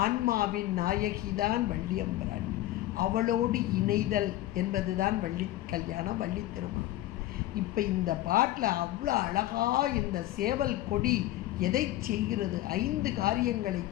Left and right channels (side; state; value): right; quieter; 15.1 dB